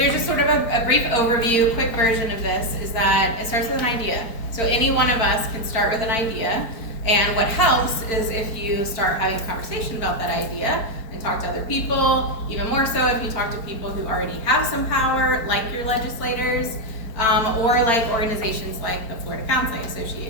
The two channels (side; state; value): right; late; 4.4 ms